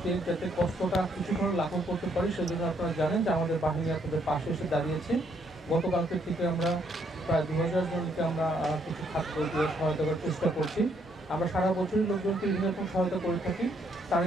যাতে কষ্টটা কিছুক্ষণ লাঘব করতে পারি সেজন্য আপনারা জানেন যে আমাদের বাহিনী আপনাদের পাশে এসে দাঁড়িয়েছে। গতকালকে থেকে আমরা প্রায় 2000 জনকে আমরা কিছু খাদ্য দিয়ে সহায়তা করার চেষ্টা করছি। আমরা সারা বছরই লোকজনকে বিভিন্ন রকম সহায়তা করে থাকি।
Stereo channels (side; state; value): both; normal; correlation 0.71